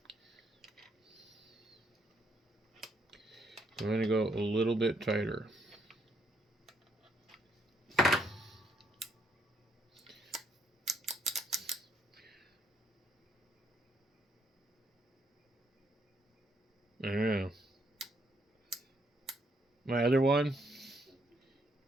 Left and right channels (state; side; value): normal; both; correlation 0.73